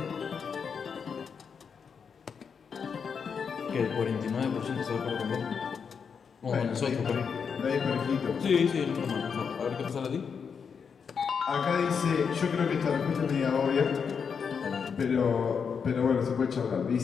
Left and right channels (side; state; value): right; quieter; 6.3 dB